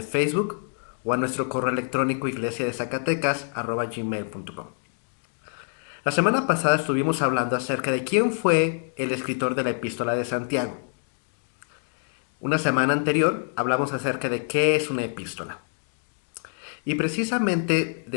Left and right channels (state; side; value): silent; right; 61 dB below the other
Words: Facebook o a nuestro correo electrónico iglesiadezacatecas@gmail.com. La semana pasada estuvimos hablando acerca de quién fue el escritor de la Epístola de Santiago. Una semana anterior hablamos acerca de qué es una epístola. Y precisamente